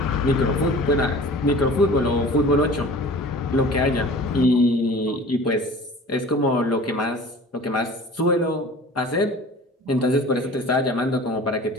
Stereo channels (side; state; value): both; normal; correlation 0.42